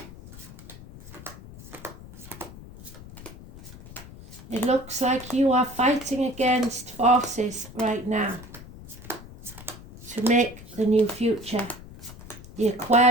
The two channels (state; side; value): noise; left; rumble, 16 dB below the sound